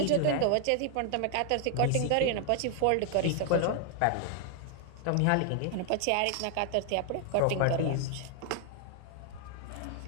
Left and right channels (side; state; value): both; different; correlation 0.00